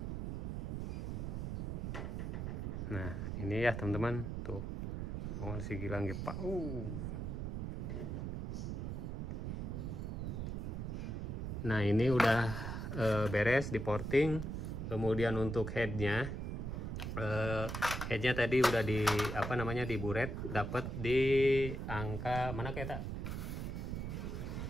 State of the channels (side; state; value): right; noise; rumble, 3 dB below the sound